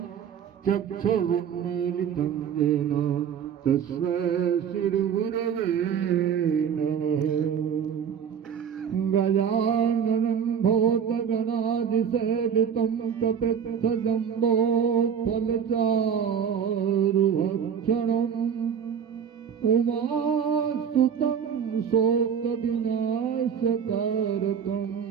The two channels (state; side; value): quieter; left; 7.8 dB